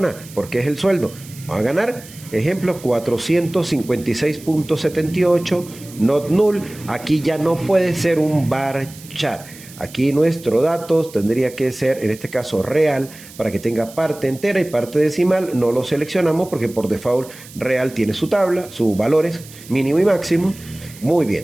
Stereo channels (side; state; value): right; noise; hiss, 19 dB below the sound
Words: Porque es el sueldo. Va a ganar, ejemplo, 456.78, not null. Aquí ya no puede ser un varchar. Aquí nuestro datos tendría que ser, en este caso, real, para que tenga parte entera y parte decimal. No lo seleccionamos porque por default real tiene su tabla, sus valores mínimo y máximo. Muy